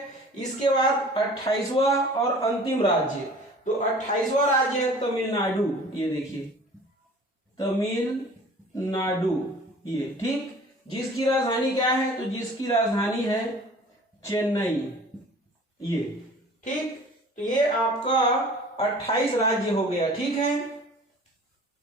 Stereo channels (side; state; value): both; normal; correlation 0.46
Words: इसके बाद 28वां और अंतिम राज्य, तो 28वां राज्य है तमिलनाडु, ये देखिए तमिलनाडु, ये ठीक। जिसकी राजधानी क्या है? तो जिसकी राजधानी है चेन्नई, ये ठीक। तो ये आपका 28 राज्य हो गया, ठीक है।